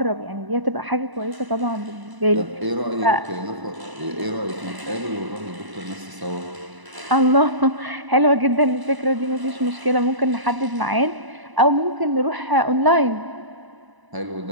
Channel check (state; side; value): late; left; 1.0 ms